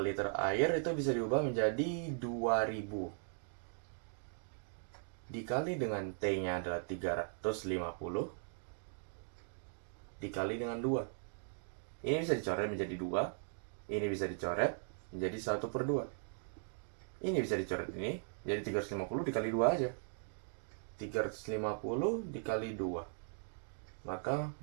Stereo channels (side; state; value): left; silent; digital silence